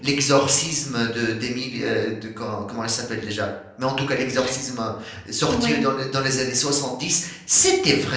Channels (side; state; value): both; identical; correlation 1.00